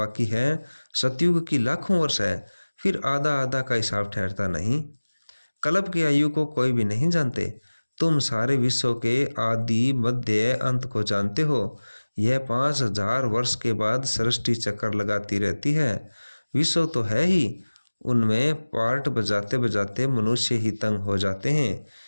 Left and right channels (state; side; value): inverted; both; correlation -1.00